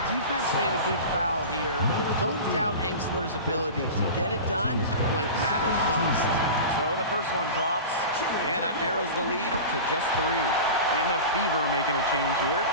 Defense made a good foul here, but don't doubt Angstler's ability to get it done when it matters most. So the first one drops, and that narrows the lead to just 3. And the Fever making a change here.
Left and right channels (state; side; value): inverted; both; correlation -0.31